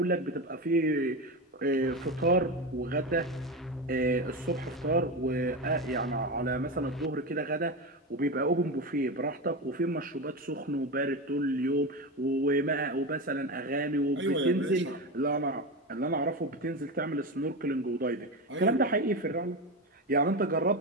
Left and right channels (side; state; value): both; normal; correlation 0.18